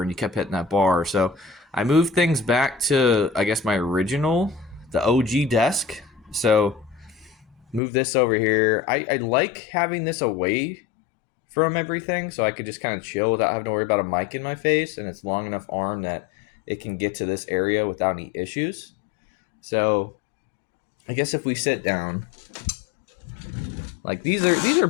and you kept hitting that bar. So I moved things back to, I guess, my original, the OG desk. So move this over here. I like having this away from everything so I could just kind of chill without having to worry about a mic in my face, and it's long enough arm that it can get to this area without any issues. So I guess if we sit down, like these are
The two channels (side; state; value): right; drops out; at 7.8 s